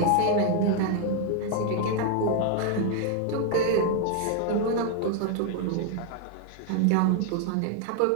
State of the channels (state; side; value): different; both; correlation 0.00